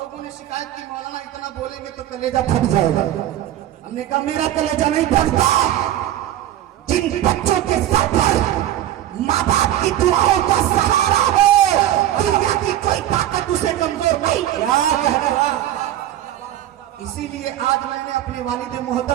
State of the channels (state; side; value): quieter; left; 12.7 dB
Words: ने शिकायत की मौलाना इतना बोलेंगे तो कलेजा फट जाएगा। हमने कहा मेरा कलेजा नहीं फटता। जिन बच्चों के सर पर माँ बाप की दुआओं का सहारा हो, दुनिया की कोई ताकत उसे कमजोर नहीं। इसीलिए आज मैंने अपने वालिद